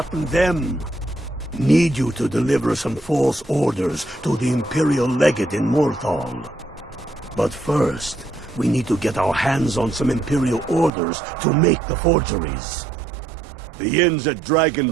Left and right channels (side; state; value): left; drops out; at 10.9 s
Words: them. Need you to deliver some false orders to the Imperial Legate in Morthal. But first, we need to get our hands on some Imperial orders to make the forgeries. The inns at